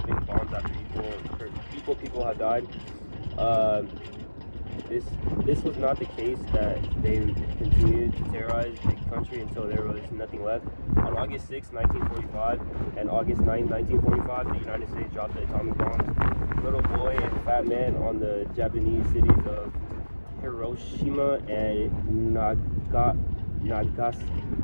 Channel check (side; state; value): both; inverted; correlation -1.00